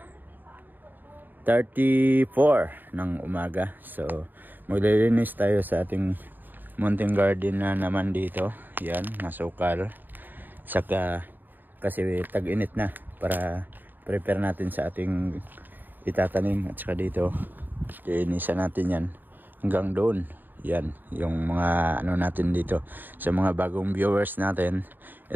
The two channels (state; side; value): late; left; 0.090 ms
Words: ng umaga. So maglilinis tayo sa ating mountain garden na naman dito. Yan, masukal. Saka kasi tag-init na, para prepare natin sa ating itatanim. At saka dito linisan natin yan hanggang doon. Yan yung mga ano natin dito. Sa mga bagong viewers natin,